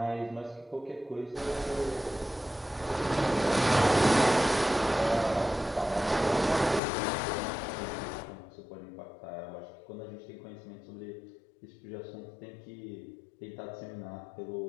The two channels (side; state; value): right; drops out; at 6.8 s